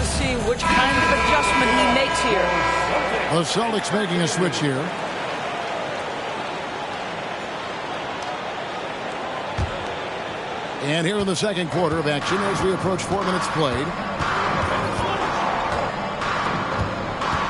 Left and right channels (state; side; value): identical; both; correlation 1.00